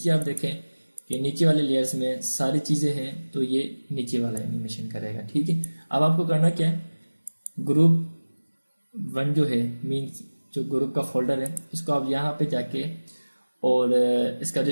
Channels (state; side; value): inverted; both; correlation -1.00